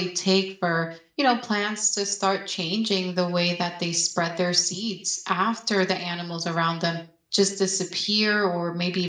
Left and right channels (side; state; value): both; identical; correlation 1.00